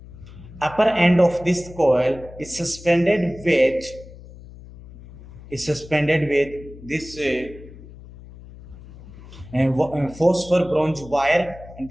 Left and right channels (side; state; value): left; noise; hum, 18 dB below the sound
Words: upper end of this coil is suspended with this phosphor bronze wire, and